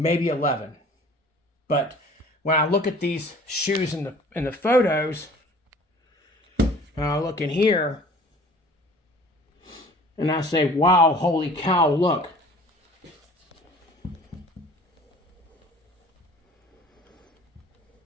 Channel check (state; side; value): normal; both; correlation 0.48